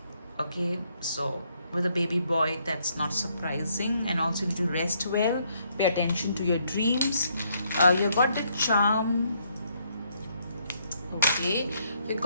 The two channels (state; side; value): inverted; both; correlation -0.72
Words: Okay, so with a baby boy, that's not surprising. And also you need to rest well, pay attention to your dreams. You got the charm. Okay, you